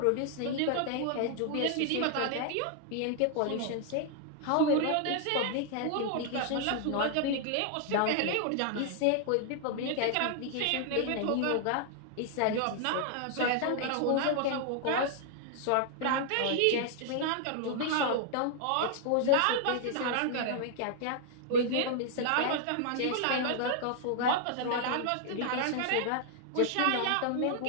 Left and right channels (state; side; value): different; both; correlation 0.00